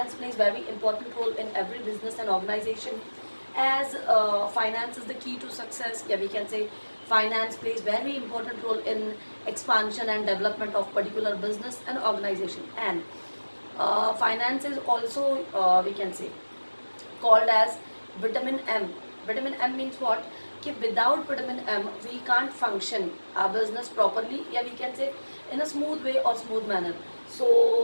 plays very important role in every business and organization, as finance is the key to success. Yeah, we can say finance plays very important role in expansion and development of particular business and organization. And finance is also we can say called as vitamin M. Vitamin M means what? Ki without vitamin M, we can't function our business properly. Yeah, we can say in a smooth way or smooth manner.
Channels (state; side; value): inverted; both; correlation -1.00